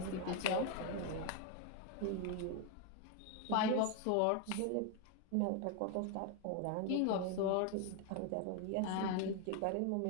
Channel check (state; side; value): different; both; correlation 0.01